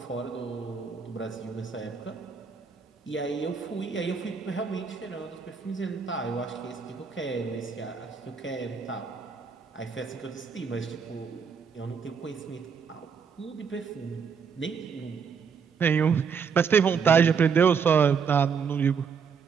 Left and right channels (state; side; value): quieter; left; 6.3 dB